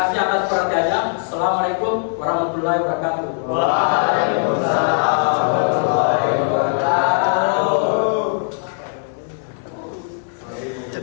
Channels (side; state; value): right; silent; digital silence